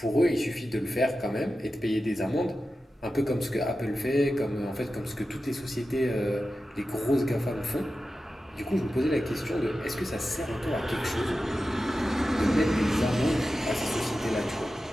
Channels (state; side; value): normal; both; correlation 0.93